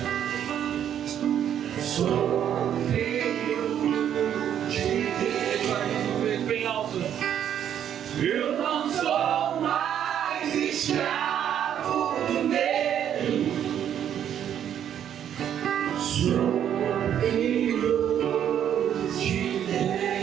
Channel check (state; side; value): quieter; left; 9.7 dB